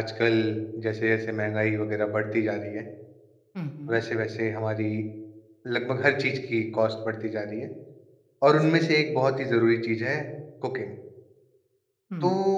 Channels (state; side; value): identical; both; correlation 1.00